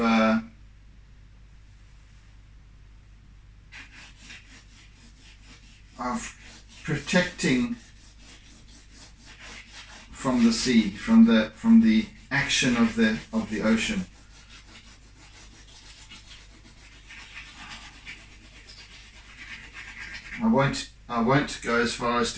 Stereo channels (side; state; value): both; identical; correlation 1.00